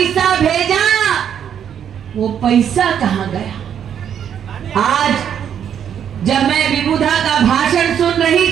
भेजा, वो पैसा कहां गया? आज जब मैं विभूधा का भाषण सुन रही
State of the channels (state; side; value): quieter; left; 8.8 dB